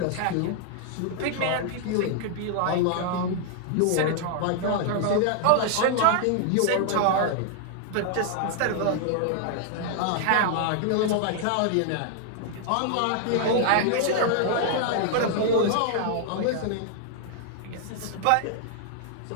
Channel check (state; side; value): different; both; correlation 0.00